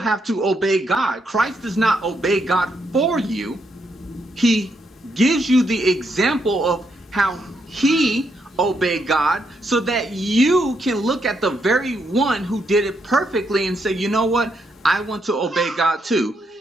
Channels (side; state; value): both; normal; correlation 0.78